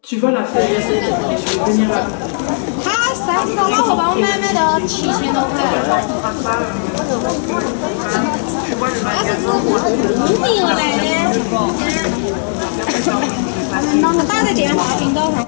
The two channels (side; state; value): right; silent; 65 dB below the other